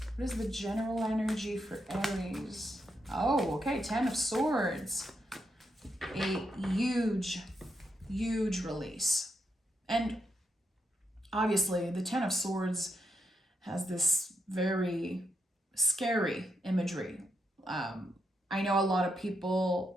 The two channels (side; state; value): both; normal; correlation 0.82